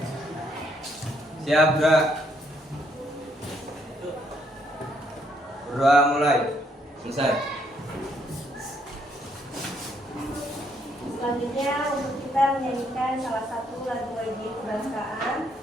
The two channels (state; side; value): normal; both; correlation 0.72